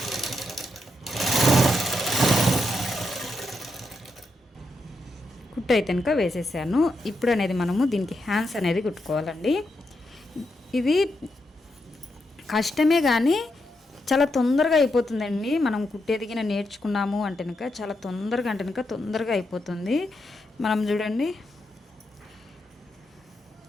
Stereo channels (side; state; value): both; normal; correlation 0.83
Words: కుట్టు అయితే కనుక వేసేసాను. ఇప్పుడు అనేది మనము దీనికి హ్యాండ్స్ అనేది కుట్టుకోవాలండి. ఇది కష్టమే కానీ చాలా తొందరగా అయిపోతుందండి. మనం కుట్టేదిగిన నేర్చుకున్నాము అంటే కనుక చాలా తొందరగా అయిపోతుంది. మనం చూడండి